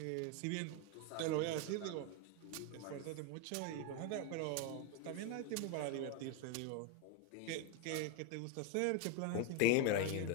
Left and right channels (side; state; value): both; different; correlation 0.01